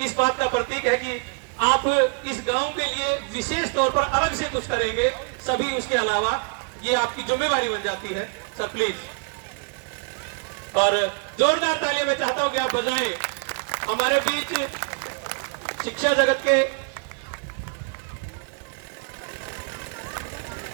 इस बात का प्रतीक है कि आप इस गांव के लिए विशेष तौर पर अलग से कुछ करेंगे, सभी उसके अलावा ये आपकी जिम्मेवारी बन जाती है, सर प्लीज। और जोरदार तालियां मैं चाहता हूं कि आप बजाएं। हमारे बीच शिक्षा जगत के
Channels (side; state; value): left; quieter; 34.4 dB